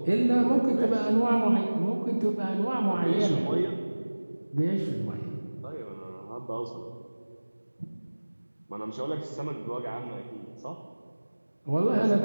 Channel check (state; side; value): inverted; both; correlation -1.00